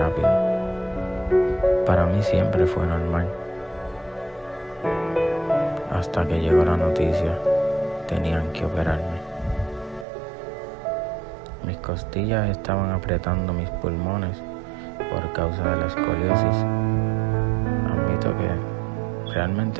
Para mí siempre fue normal. Hasta que llegó la noticia, tenían que operarme. Mis costillas estaban apretando mis pulmones por causa de la escoliosis. Admito que realmente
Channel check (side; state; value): left; drops out; at 10.1 s